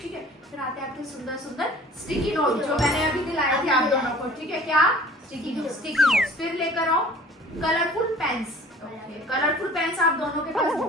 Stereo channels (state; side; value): normal; both; correlation 0.48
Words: ठीक है फिर आते हैं आपके सुंदर सुंदर स्टिकी नोट जो मैंने अभी दिलाए थे आप दोनों को ठीक है क्या स्टिकी नोट्स फिर लेकर आओ कलरफुल पेन्स कलरफुल पेन्स आप दोनों के पास